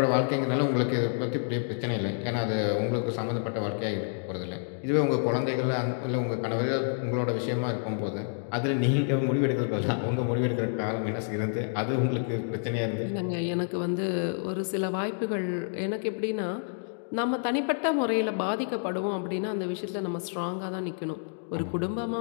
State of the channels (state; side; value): silent; right; digital silence